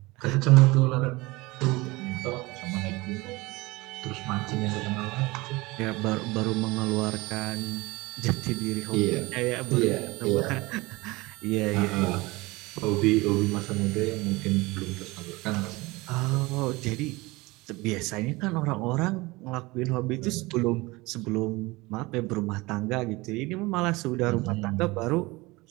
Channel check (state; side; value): quieter; left; 22.5 dB